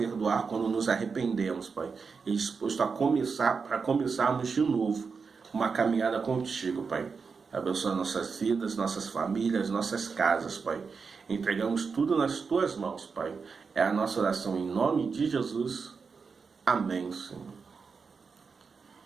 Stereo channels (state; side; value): quieter; left; 5.2 dB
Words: quando nos arrependemos, Pai. E disposto a começarmos de novo uma caminhada contigo, Pai. Abençoa nossas vidas, nossas famílias, nossas casas, Pai. Entregamos tudo nas Tuas mãos, Pai. É a nossa oração em nome de Jesus. Amém, Senhor.